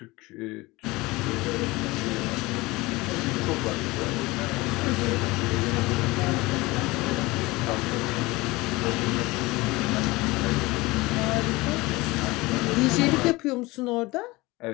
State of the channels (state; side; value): quieter; right; 21.7 dB